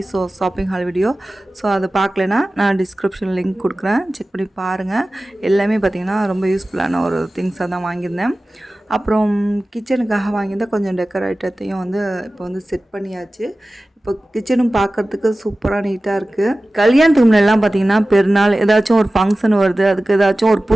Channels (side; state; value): both; normal; correlation 0.96